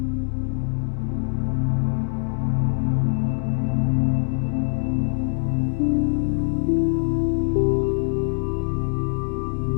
came the Devonian period, about 400 million years ago, a time rightly called the Age of Ferns and the first forests.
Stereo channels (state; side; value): silent; right; 61 dB below the other